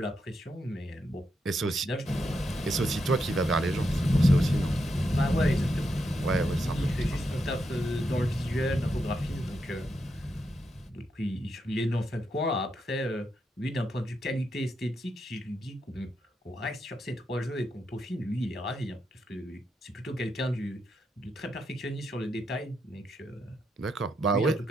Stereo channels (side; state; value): both; normal; correlation 0.83